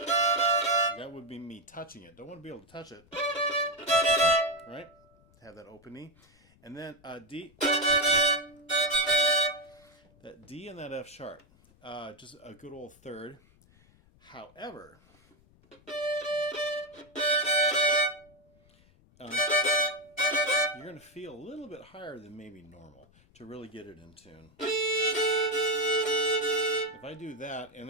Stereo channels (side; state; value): left; noise; rumble, 30 dB below the sound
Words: that would be me touching it. Don't want to be able to touch it, right? Have that open E. And then D, that D and that F sharp, just a good old third. However, you're going to feel a little bit higher than maybe normal to really get it in tune. If I do that and